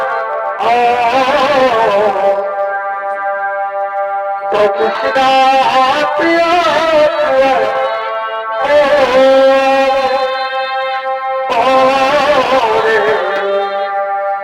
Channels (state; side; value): identical; both; correlation 1.00